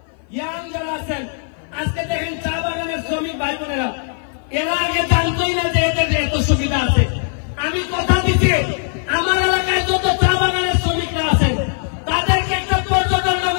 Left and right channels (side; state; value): right; silent; 56 dB below the other